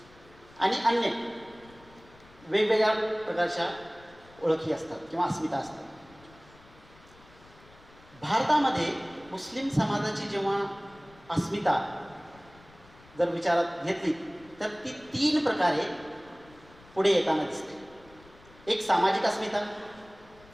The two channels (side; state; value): left; noise; rumble, 25 dB below the sound